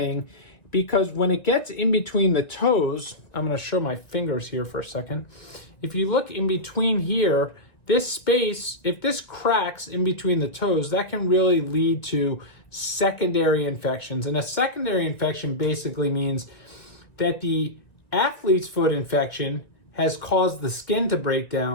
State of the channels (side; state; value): right; late; 1.9 ms